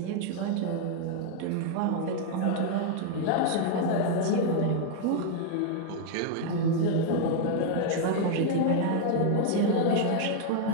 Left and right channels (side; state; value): both; different; correlation 0.00